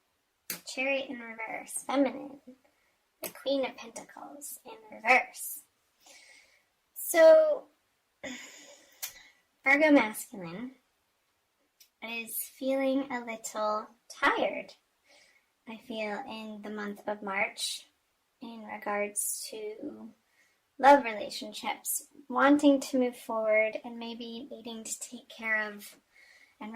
the Chariot in reverse, feminine, the Queen of Pentacles in reverse. So, Virgo masculine is feeling a little tired, I feel, in the month of March in regards to love relationships, wanting to move forward and maybe needing to take care of and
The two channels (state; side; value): identical; both; correlation 1.00